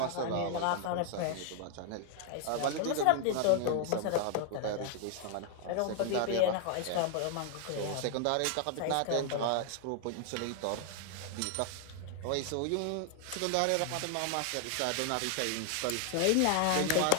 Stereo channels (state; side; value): different; both; correlation 0.00